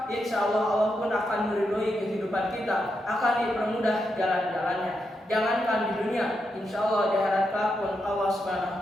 insya Allah pun akan meridhoi kehidupan kita, akan dipermudah jalan-jalannya. Jangankan di dunia, insya Allah di akhirat kelak pun Allah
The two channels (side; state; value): both; normal; correlation 0.84